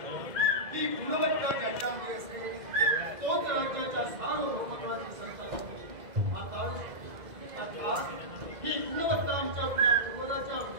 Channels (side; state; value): left; late; 2.0 ms